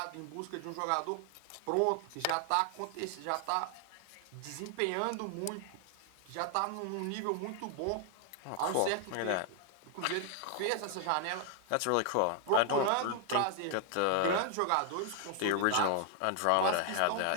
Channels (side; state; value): both; different; correlation 0.00